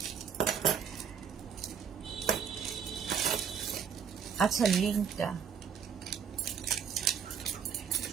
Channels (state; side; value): quieter; left; 7.4 dB